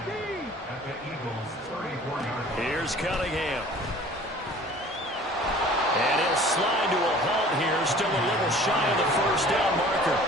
at the Eagles' 34-yard line. Here's Cunningham. And he'll slide to a halt here. Still a little shy of the 1st down marker.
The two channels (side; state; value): both; normal; correlation 0.48